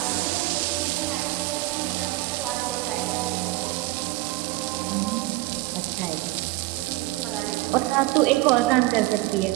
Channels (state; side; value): quieter; left; 19.6 dB